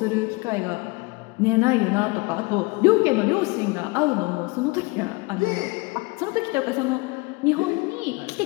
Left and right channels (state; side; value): quieter; right; 26.0 dB